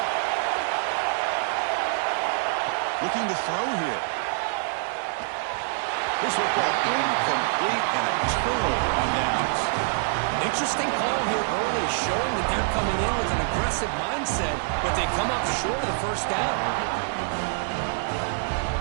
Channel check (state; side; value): silent; left; digital silence